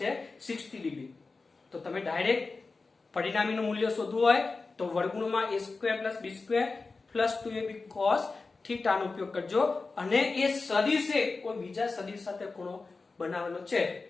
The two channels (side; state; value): right; quieter; 4.0 dB